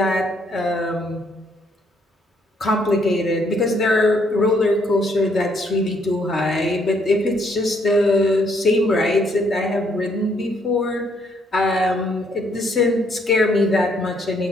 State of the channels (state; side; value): normal; both; correlation 0.69